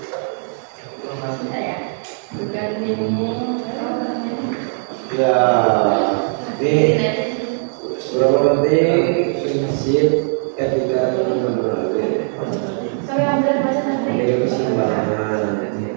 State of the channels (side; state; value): left; silent; 64 dB below the other